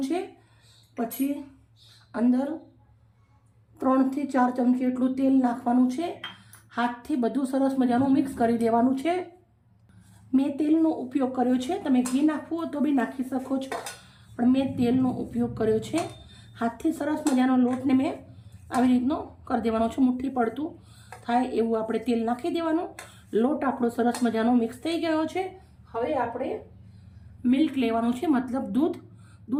છે. પછી અંદર 3 થી 4 ચમચી એટલું તેલ નાખવાનું છે. હાથથી બધું સરસ મજાનું મિક્સ કરી દેવાનું છે. મેં તેલનો ઉપયોગ કર્યો છે. તમે ઘી નાખવું હોય તો બી નાખી શકો છો, પણ મેં તેલનો ઉપયોગ કર્યો છે. હાથથી સરસ મજાનો લોટને મેં આવી રીતનો કરી દેવાનો છે. મુઠ્ઠી પડતું થાય એવું આપણે તેલ નાખી દેવાનું. લોટ આપણો સરસ મજાનો મિક્સ થઈ ગયો છે. હવે આપણે મિલ્ક લેવાનું છે, મતલબ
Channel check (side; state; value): both; identical; correlation 1.00